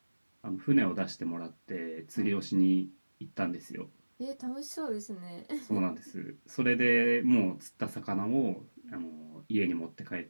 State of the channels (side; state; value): both; inverted; correlation -1.00